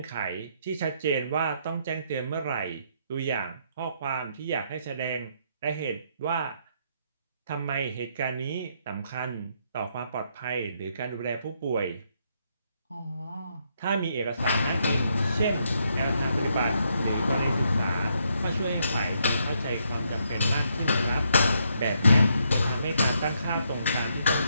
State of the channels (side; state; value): both; inverted; correlation -0.75